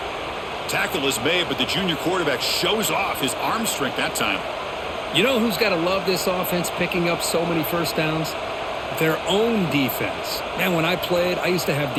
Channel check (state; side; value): identical; both; correlation 1.00